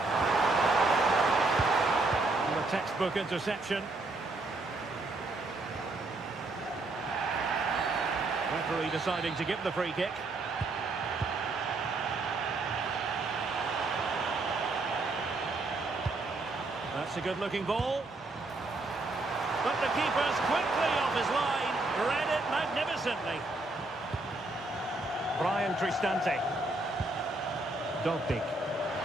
And a textbook interception. Referee deciding to give the free kick. That's a good-looking ball. But the keeper's quickly off his line. Read it magnificently. Brian Cristante. Dogbig.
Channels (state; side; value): quieter; left; 3.1 dB